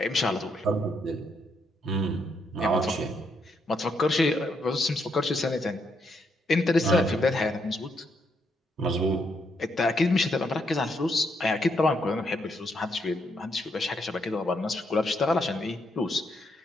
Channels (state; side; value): normal; both; correlation 0.76